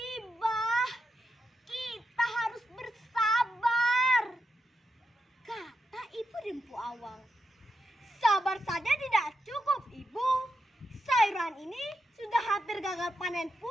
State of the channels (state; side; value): normal; both; correlation 0.85